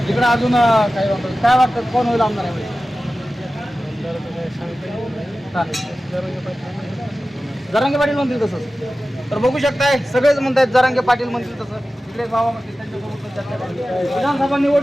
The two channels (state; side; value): normal; both; correlation 0.95